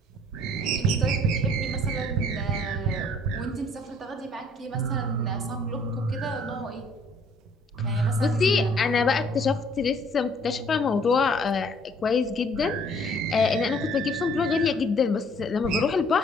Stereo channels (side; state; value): both; normal; correlation 0.59